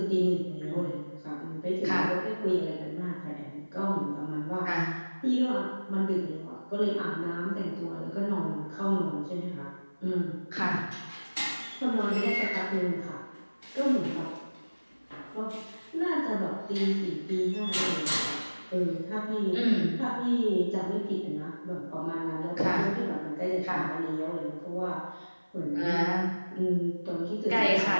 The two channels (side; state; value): both; inverted; correlation -1.00